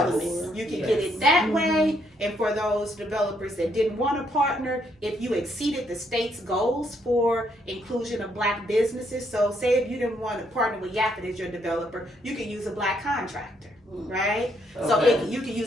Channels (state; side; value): normal; both; correlation 0.73